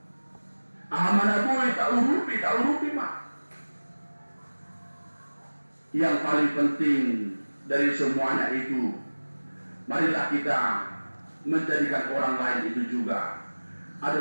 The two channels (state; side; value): inverted; both; correlation -1.00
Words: Ahamana bui taurupi ma. Yang paling penting dari semuanya itu, marilah kita menjadikan orang lain itu juga